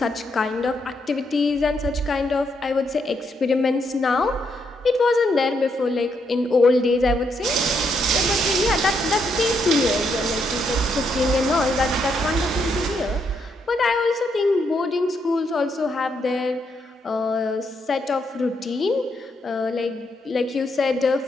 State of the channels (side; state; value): both; normal; correlation 0.77